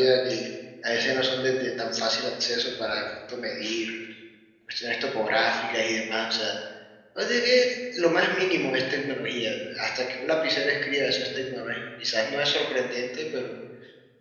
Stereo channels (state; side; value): identical; both; correlation 1.00